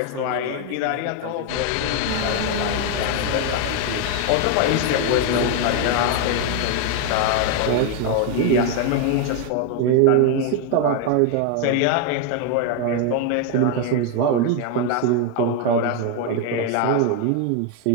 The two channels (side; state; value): both; different; correlation 0.01